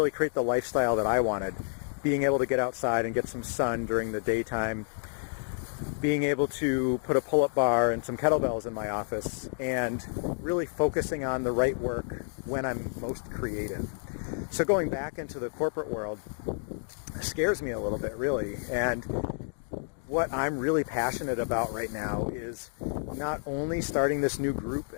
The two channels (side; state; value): right; silent; digital silence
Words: create the lifestyle that I wanted. Being able to get outside and get some sun during the daytime, being able to put a pull-up bar and some kettlebells in my office, and really focusing on the right work when I'm most creative. So going back into the corporate world scares me a little bit, really. And what I'm really passionate about right now is not only starting this new group